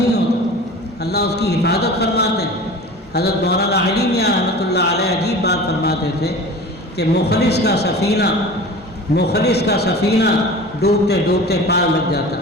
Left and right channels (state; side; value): normal; both; correlation 0.37